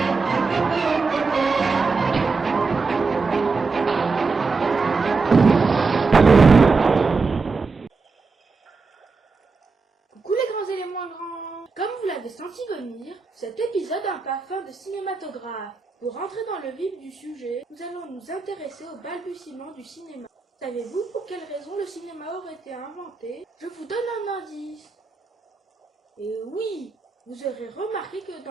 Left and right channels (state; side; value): quieter; left; 4.3 dB